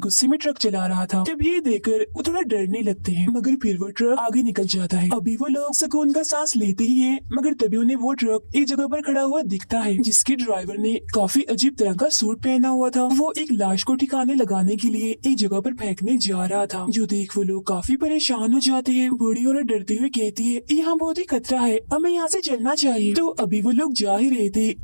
गुस्से में ट्रक चला रहा था। तब ये देखकर वो थोड़ा डरने लगते हैं, मगर फिर वो ट्रक आगे निकल जाता है। अभी वो लोग सुकून का सांस लेते ही हैं, मगर तभी उन्हें वो ट्रक एक जगह पर खड़ा हुआ दिखता है जिसके ड्राइवर ने काफी अजीब तरह का सूट पहना हुआ था। वो एक लाश को ठिकाने लगाने के लिए एक जगह पर फेंकने जा रहा था, जो देख वो लोग काफी परेशान हो जाते हैं। बूढ़ी औरत डरते हुए कहती है, यहाँ बहुत ही खतरा है, हमें यहाँ से चलना चाहिए। तो अभी वो लोग जा ही रहे थे,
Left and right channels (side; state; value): both; inverted; correlation -1.00